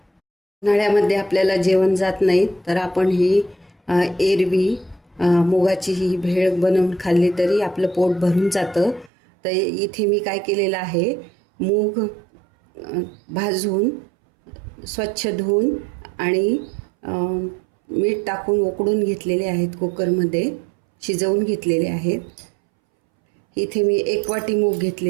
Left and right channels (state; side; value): drops out; left; at 9.1 s